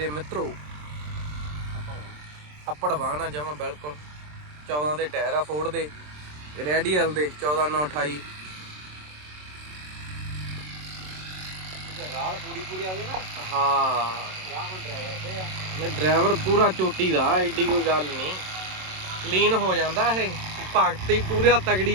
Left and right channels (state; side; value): late; left; 27 ms